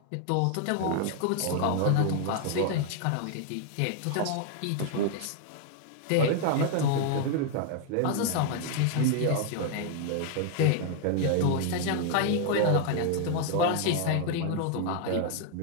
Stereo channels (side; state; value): both; different; correlation 0.00